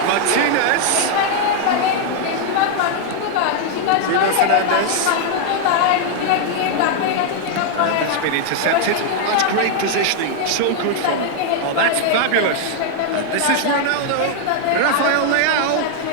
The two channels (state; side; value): different; both; correlation 0.00